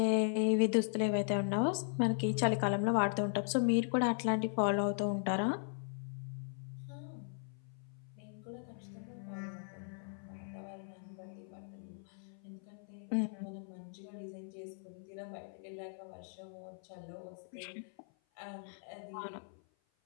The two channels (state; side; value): silent; right; 52 dB below the other